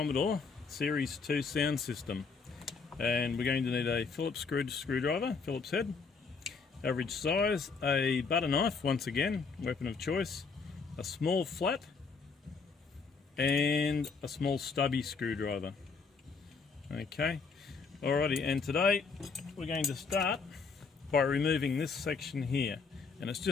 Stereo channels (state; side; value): quieter; right; 4.9 dB